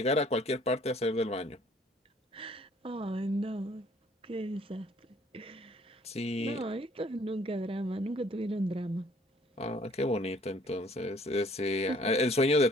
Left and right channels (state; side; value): normal; both; correlation 0.59